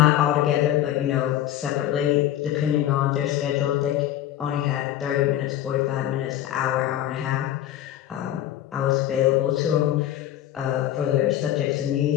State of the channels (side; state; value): right; quieter; 12.4 dB